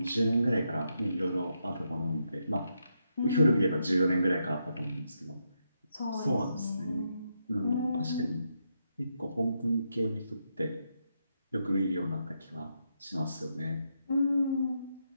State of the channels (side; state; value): both; inverted; correlation -0.82